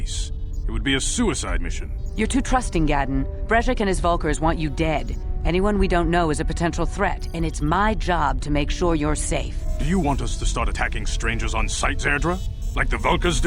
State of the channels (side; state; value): both; identical; correlation 1.00